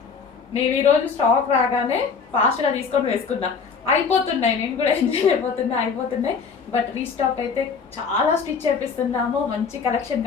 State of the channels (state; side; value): quieter; right; 5.6 dB